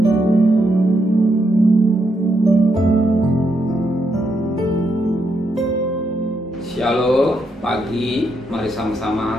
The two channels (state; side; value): normal; both; correlation 0.80